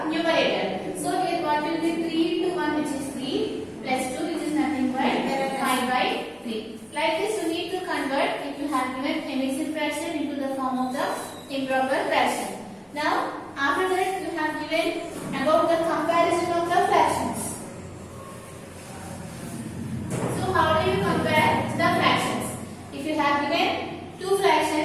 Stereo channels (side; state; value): both; identical; correlation 1.00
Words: numerator. So here improper fraction. Now, after that you have given about the comparison of the fractions. So, how do you compare the fractions? If you have given two